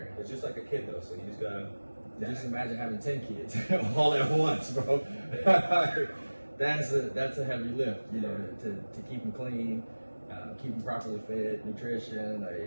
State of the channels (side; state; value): both; inverted; correlation -1.00